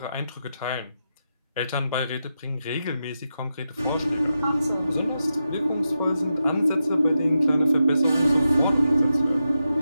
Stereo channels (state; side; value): inverted; both; correlation -0.88